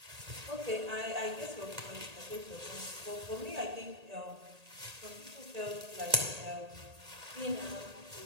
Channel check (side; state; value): left; late; 1.8 ms